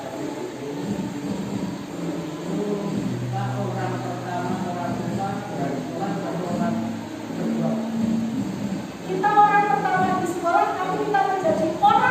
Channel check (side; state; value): both; identical; correlation 1.00